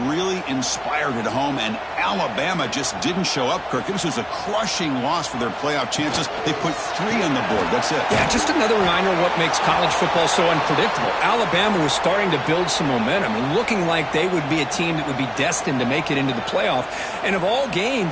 really inspired at home, and Alabama just didn't show up, Kirk. This was a crushing loss for their playoff chances. They put 3 on the board. That's it. Yeah, just another reminder of what makes college football so unpredictable. Alabama was starting to build some momentum and looking like they would be a team that would be destined to make it into the playoff. And of all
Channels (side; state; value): both; identical; correlation 1.00